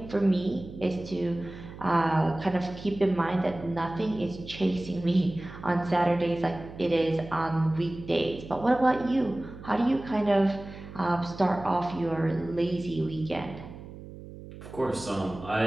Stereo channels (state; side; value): noise; right; hum, 14 dB below the sound